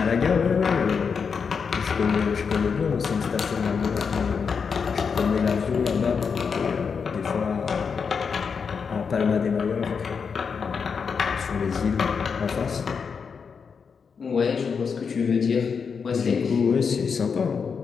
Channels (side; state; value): right; quieter; 5.9 dB